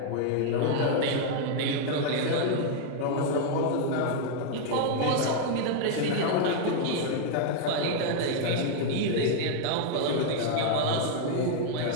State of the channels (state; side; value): different; both; correlation 0.00